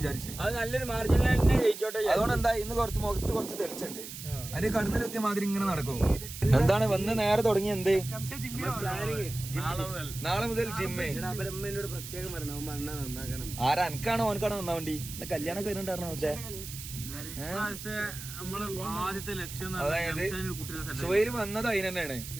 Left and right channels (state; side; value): noise; right; hiss, 11 dB below the sound